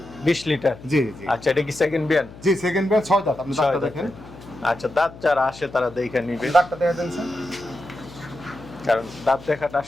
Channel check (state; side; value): noise; left; hum, 18 dB below the sound